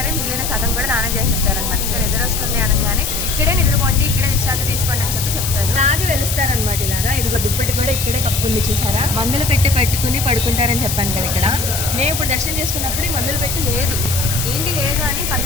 మిగిలిన సగం కూడా దానం చేసేస్తారనమాట. ఇంకా నిద్రొస్తుంది అనగానే ఇక్కడే నిద్రపోండి, ఇక్కడే విశ్రాంతి తీసుకోండి అని చెప్తారు. అలాగే వెలుస్తారనమాట. ఇలాగా ఇదిగో దుప్పటి కూడా ఇక్కడే కప్పు ఉంది చూసారా. మందులు పెట్టుకుని పడుకుంటారని చెప్పాను కదా. ఇక్కడ నేను ఇప్పుడు దర్శనం చేసుకున్నప్పుడు మందులు పెట్టి లేదు, ఏంటి లేదు అని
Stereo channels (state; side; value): noise; left; hiss, 3 dB below the sound